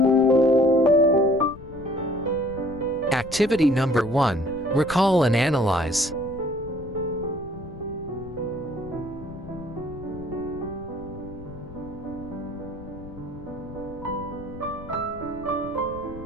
Activity number 1, Recall and Analyze.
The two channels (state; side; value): noise; left; rumble, 15 dB below the sound